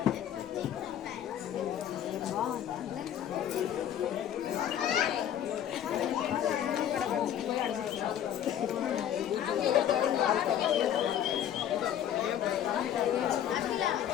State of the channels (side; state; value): right; quieter; 10.3 dB